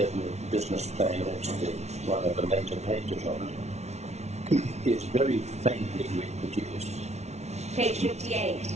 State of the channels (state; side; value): late; left; 0.32 ms